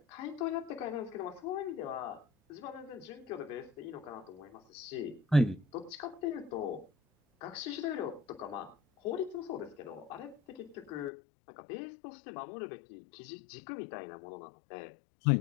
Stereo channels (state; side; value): drops out; right; at 11.1 s